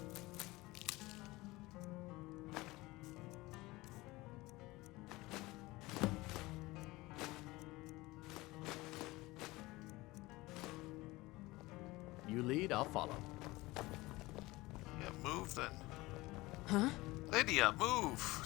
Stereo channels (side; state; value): right; quieter; 20.6 dB